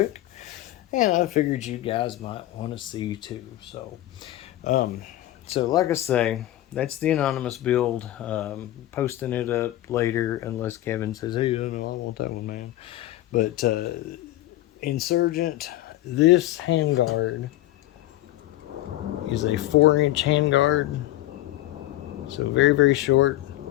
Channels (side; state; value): right; quieter; 15.2 dB